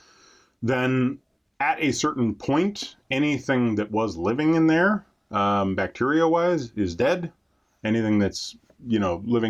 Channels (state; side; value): identical; both; correlation 1.00